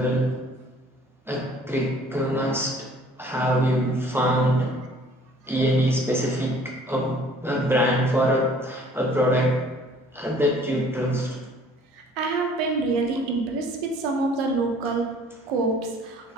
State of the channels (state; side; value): normal; both; correlation 0.54